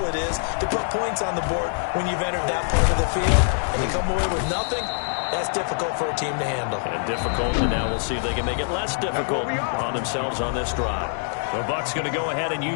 it is to put points on the board when you've entered that part of the field. And you come away with nothing. That's difficult for a team to handle. And difficult, and now we'll see if they can make it less difficult on themselves on this drive. The Bucs going to go ahead and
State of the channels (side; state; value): right; silent; digital silence